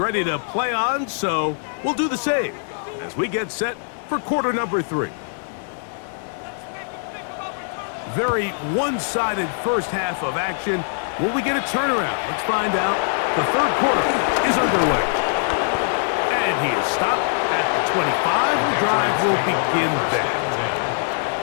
to play on, so we'll do the same as we get set for quarter number 3. Very one-sided first half of action. Will we get a turnaround? Let's find out. The third quarter is underway. And he is stopped at the 25. The drive will begin there.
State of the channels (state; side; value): silent; right; digital silence